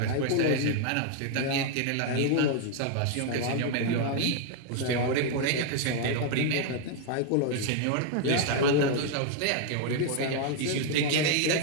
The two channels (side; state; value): both; different; correlation 0.00